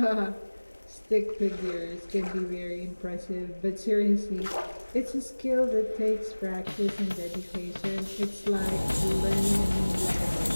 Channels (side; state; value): both; inverted; correlation -1.00